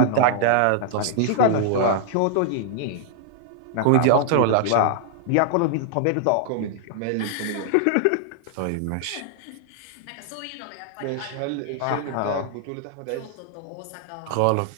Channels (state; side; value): different; both; correlation -0.01